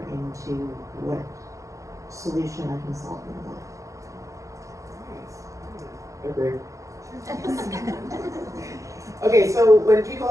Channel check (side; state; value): left; late; 0.15 ms